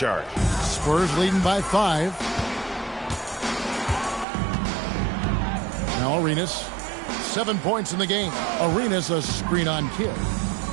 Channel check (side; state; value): left; drops out; at 4.2 s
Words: Spurs leading by 5. Now Arenas, 7 points in the game. Arenas a screen on Kidd.